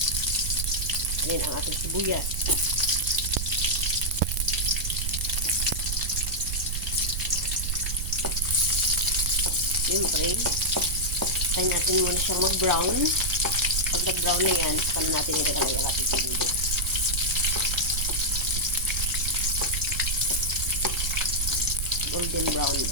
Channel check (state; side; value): noise; right; rumble, 2 dB below the sound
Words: Ayan ang ating sibuyas. Siyempre, tayo natin muna siyang mag-brown. Pag nag-brown na yan, saka na natin ilalagay ang ating sibuyas. Golden brown